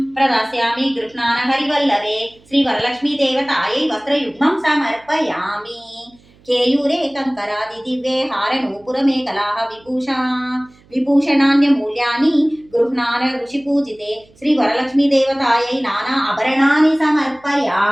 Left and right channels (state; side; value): noise; right; hum, 29 dB below the sound